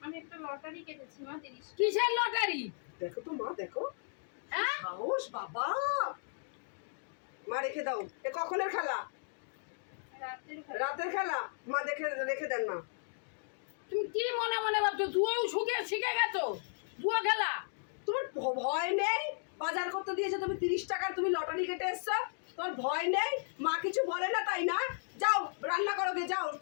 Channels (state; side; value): silent; right; digital silence